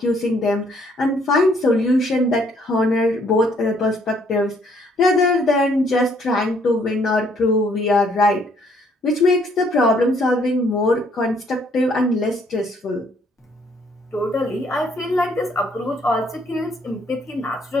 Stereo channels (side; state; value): both; normal; correlation 0.66